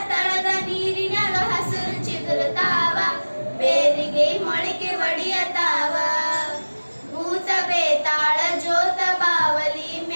ತಳದ ನೀರಿನಾಗ ಹಸಿರು ಚಿಗುರುತ್ತಾವ ಬೇರಿಗೆ ಮೊಳಕೆ ಒಡೆಯತಾವ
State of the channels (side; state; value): both; inverted; correlation -1.00